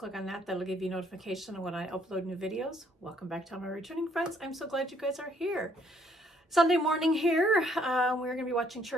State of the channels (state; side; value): normal; both; correlation 0.66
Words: on that, that'll give you notification when I upload new videos. Welcome back to all my returning friends. I'm so glad you guys are here. Sunday morning here. We're going to be watching